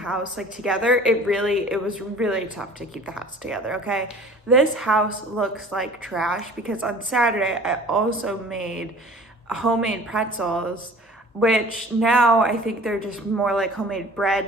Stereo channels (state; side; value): normal; both; correlation 0.46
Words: like together, it was really tough to keep the house together, okay? This house looks like trash because on Saturday, I also made homemade pretzels, which now I think they're just more like homemade